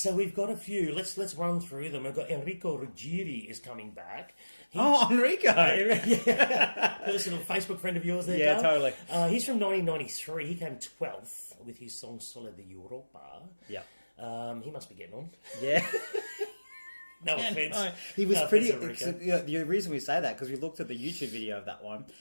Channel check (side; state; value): both; inverted; correlation -1.00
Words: we've got a few. Let's run through them. We've got Enrico Ruggieri is coming back. Enrico! Personal Facebook friend of yours there, Yeah, Carl. totally. He's from 1993. He came 12th with his song Sole di Europa. Yeah. He must be getting on. Yeah. No offense. No, he was No pretty. offense, Yeah, the reason we say that because we looked at the YouTube video of that one.